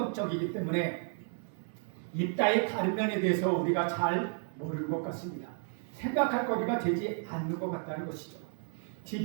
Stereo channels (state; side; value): silent; left; 56 dB below the other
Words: 때문에 입다의 다른 면에 대해서 우리가 잘 모르는 것 같습니다. 생각할 거리가 되지 않는 것 같다는 것이죠.